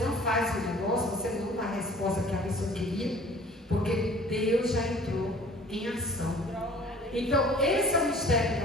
faz o negócio, você não dá a resposta que a pessoa queria, porque Deus já entrou em ação. Então, esse é o mistério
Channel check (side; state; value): both; normal; correlation 0.50